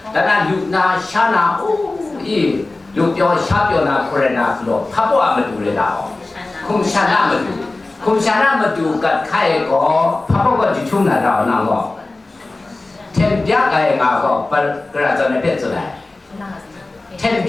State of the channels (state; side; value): quieter; right; 3.1 dB